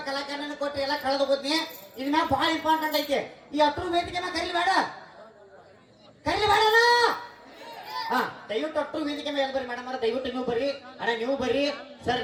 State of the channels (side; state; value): both; identical; correlation 1.00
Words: ಕಲಾಕಾರನ ಕೊಟ್ರಿ, ಎಲ್ಲ ಕಳೆದು ಹೋದ್ನಿ. ಇದ್ ಮ್ಯಾಗ ಭಾಳ ಇಂಪಾರ್ಟೆಂಟ್ ಐತಿ. ಈ ಹತ್ರ ವೇದಿಕೆ ಮ್ಯಾಗ ಕರೀಲಿ ಬೇಡ ಹಾ ದಯವಿಟ್ಟು ಅಟ್ರು ವೇದಿಕೆ ಮೇಲೆ ಬರ್ರಿ ಮೇಡಮ್. ದಯವಿಟ್ಟು ನೀವು ಬರ್ರಿ, ಅಣ್ಣ ನೀವು ಬರ್ರಿ, ಸರ್